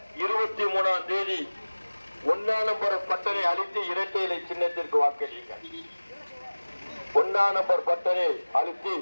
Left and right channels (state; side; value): inverted; both; correlation -1.00